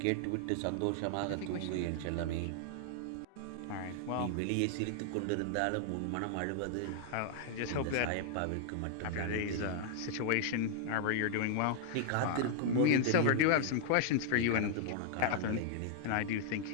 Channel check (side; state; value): both; different; correlation 0.00